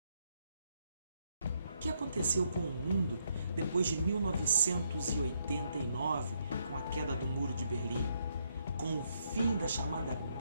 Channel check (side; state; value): both; inverted; correlation -0.75